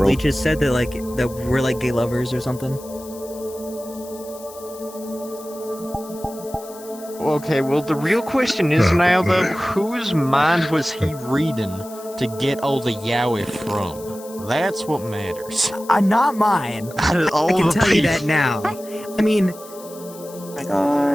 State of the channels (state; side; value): noise; left; hiss, 19 dB below the sound